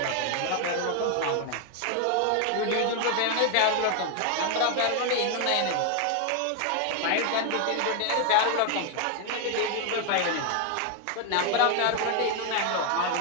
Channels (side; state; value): both; different; correlation 0.00